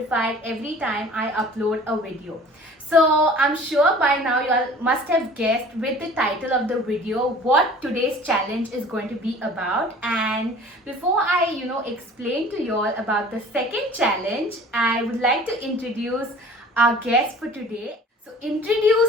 every time I upload a video. So I'm sure by now you all must have guessed with the title of the video what today's challenge is going to be about. And before I explain to you all about the second challenge, I would like to introduce our guest for today. So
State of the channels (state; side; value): normal; both; correlation 0.46